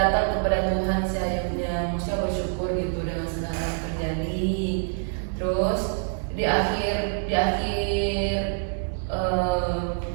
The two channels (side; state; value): left; silent; 61 dB below the other